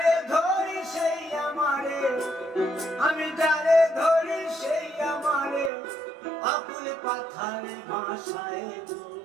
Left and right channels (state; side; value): drops out; left; at 5.7 s